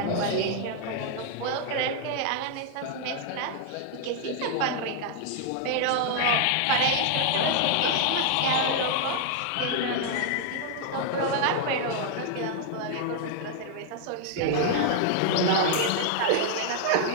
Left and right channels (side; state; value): both; different; correlation -0.01